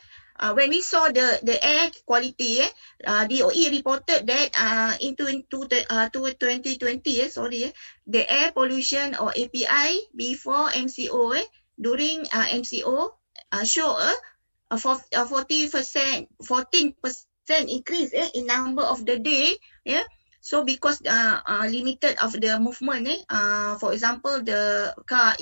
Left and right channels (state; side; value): inverted; both; correlation -1.00